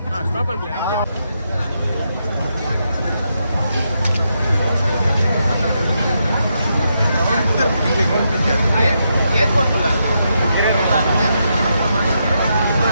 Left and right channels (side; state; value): both; inverted; correlation -0.82